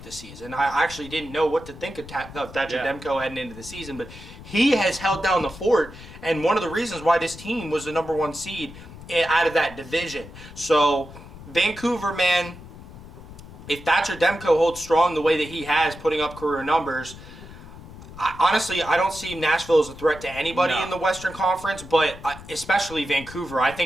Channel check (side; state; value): left; noise; rumble, 16 dB below the sound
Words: this season. I actually didn't know what to think of Thatcher Demko heading into the season, but he has held down the fort, and one of the reasons why this team was the number 1 seed out of that division. So, Vancouver, man, if Thatcher Demko holds strong the way that he has, putting up career numbers, honestly, I don't see Nashville as a threat to anybody in the Western Conference, but especially Vancouver. I